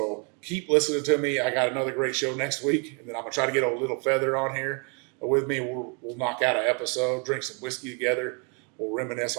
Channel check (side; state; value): left; quieter; 36.1 dB